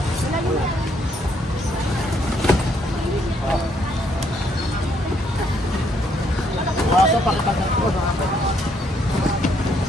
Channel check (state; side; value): normal; both; correlation 0.71